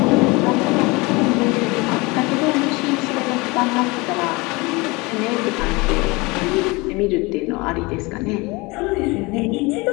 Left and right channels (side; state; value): right; quieter; 24.7 dB